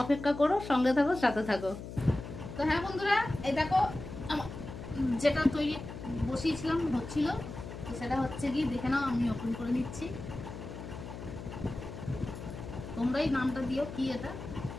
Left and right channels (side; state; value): left; noise; hum, 10 dB below the sound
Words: অপেক্ষা করো, সঙ্গে থাকো, সাথে থাকো। তো হ্যাঁ বন্ধুরা, এই দেখো যেটা তৈরি বসিয়েছিলাম হচ্ছিল, সেটা হচ্ছে কি দেখে নাও। আমি ওপেন করে নিচ্ছি, তোমরাই নামটা দিও কি এটা,